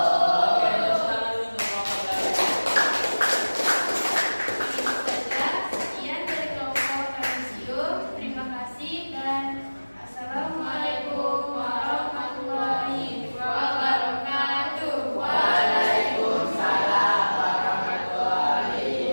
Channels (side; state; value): both; inverted; correlation -1.00